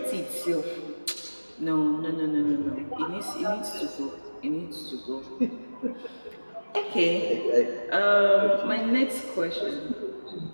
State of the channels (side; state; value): both; inverted; correlation -1.00